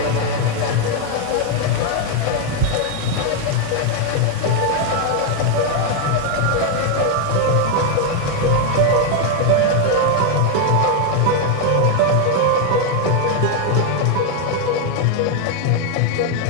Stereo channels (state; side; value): different; both; correlation 0.01